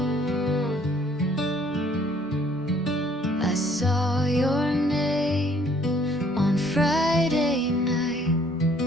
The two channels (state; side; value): normal; both; correlation 0.61